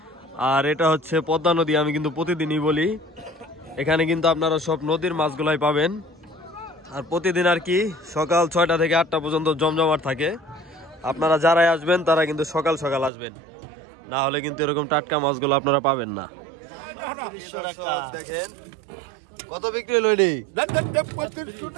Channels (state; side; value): drops out; left; at 13.1 s